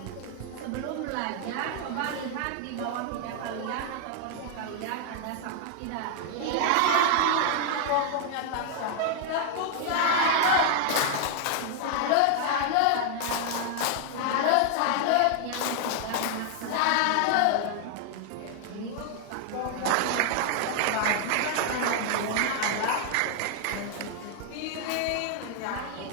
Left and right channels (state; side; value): different; both; correlation 0.00